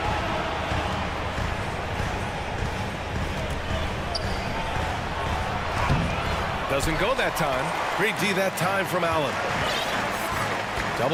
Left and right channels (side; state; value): both; identical; correlation 1.00